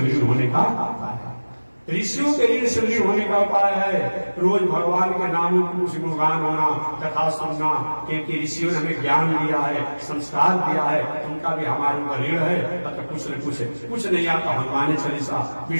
ऋण होने का है। ऋषियों के ऋण से ऋण होने का उपाय है रोज भगवान के नामों की कुछ गुणगान होना, कथा सुनना, क्योंकि ऋषियों ने हमें ज्ञान दिया है, संस्कार दिया है, उनका भी हमारे ऊपर ऋण है। अतः कुछ नहीं आता हनुमान चालीसा,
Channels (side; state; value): both; inverted; correlation -1.00